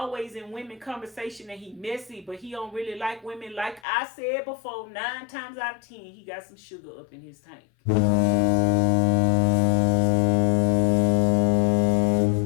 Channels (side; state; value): right; drops out; at 3.8 s